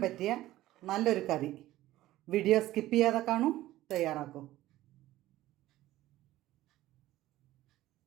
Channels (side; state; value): left; quieter; 15.6 dB